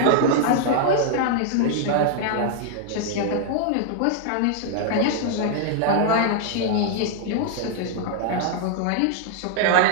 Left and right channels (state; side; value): different; both; correlation -0.01